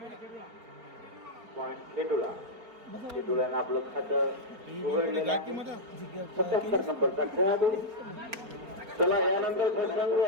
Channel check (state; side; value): late; left; 4.4 ms